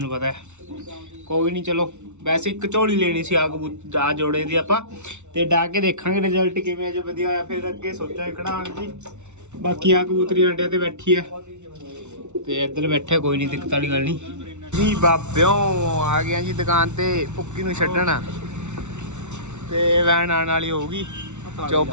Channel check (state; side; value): late; left; 0.83 ms